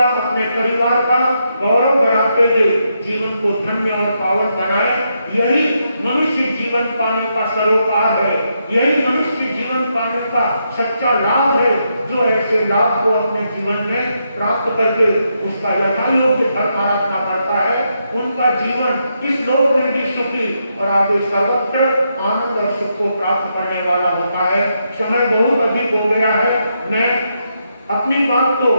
अपने परिवार का गौरव बढ़ाते हुए जीवन को धन्य और पावन बनाए। यही मनुष्य जीवन पाने का सरोकार है, यही मनुष्य जीवन पाने का सच्चा लाभ है। जो ऐसे लाभ को अपने जीवन में प्राप्त करके उसका यथायोग्य धर्म आराधना करता है, उनका जीवन इस लोक में भी सुखी और आगे सर्वत्र आनंद और सुख को प्राप्त करने वाला होता है। समय बहुत अधिक हो गया है, मैं अपनी बात को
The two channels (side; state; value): both; inverted; correlation -0.81